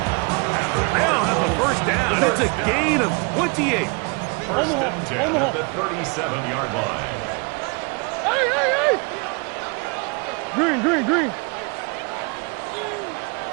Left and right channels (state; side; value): quieter; left; 31.9 dB